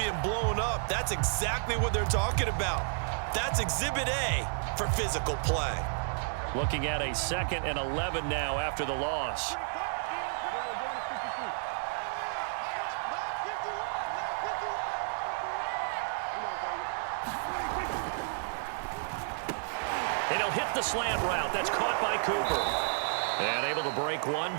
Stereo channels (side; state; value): left; silent; 57 dB below the other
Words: blown up, that's exactly what they're talking about. That's Exhibit A for physical play. Looking at a 2nd and 11 now after the loss. Hit the slant route. That's caught by Cooper. And able to break one